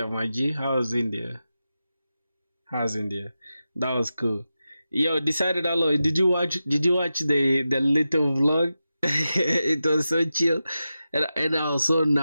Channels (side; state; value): both; inverted; correlation -0.92